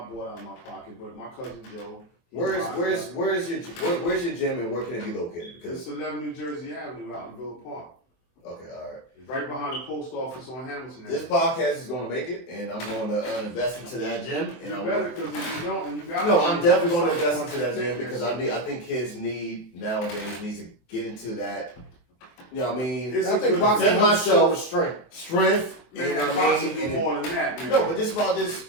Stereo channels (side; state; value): right; late; 24 ms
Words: bought out of my pocket. But my cousin Joe. Where's your gym and where can it be located? Because it's 11 New Jersey Avenue out in Villa Park. Okay, all right. It's right behind the post office on Hamilton. This podcast is going to make it, and I'm going to invest into that gym. And you better, because if you don't, and you got. No, I'm definitely going to invest into that gym because I think kids nowadays to get into that. You know what I mean? I think boxing myself strength. And boxing do more than that. Man. No, but this about this